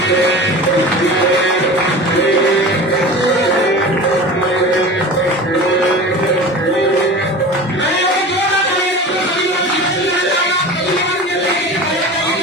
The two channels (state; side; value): normal; both; correlation 0.35